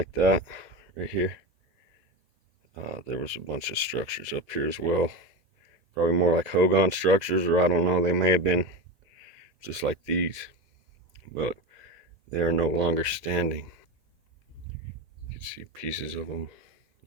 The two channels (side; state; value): left; late; 2.0 ms